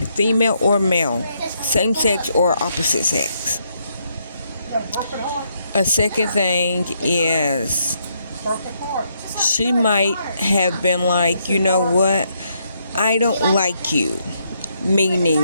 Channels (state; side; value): inverted; both; correlation -0.75